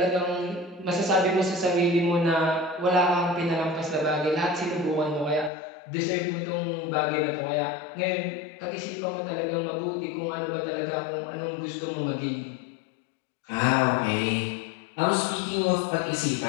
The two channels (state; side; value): drops out; right; at 5.5 s